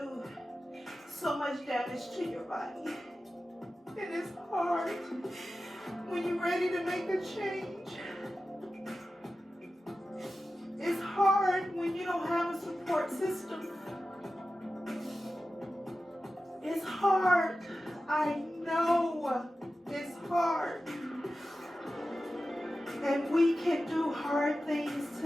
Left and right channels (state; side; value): normal; both; correlation 0.94